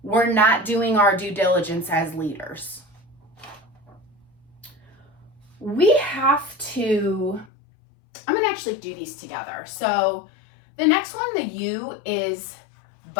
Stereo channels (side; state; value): right; drops out; at 7.5 s